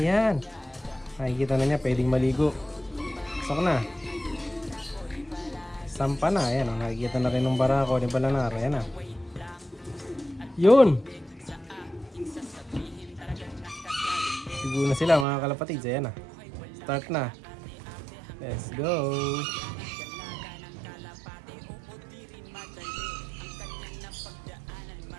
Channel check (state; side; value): drops out; left; at 15.2 s